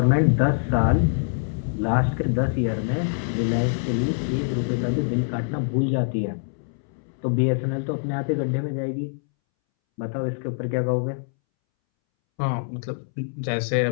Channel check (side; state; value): right; silent; 62 dB below the other